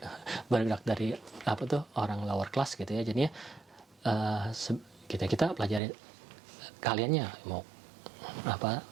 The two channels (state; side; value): drops out; left; at 5.8 s